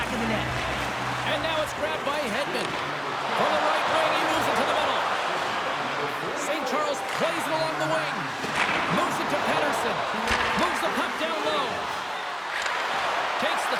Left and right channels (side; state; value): both; identical; correlation 1.00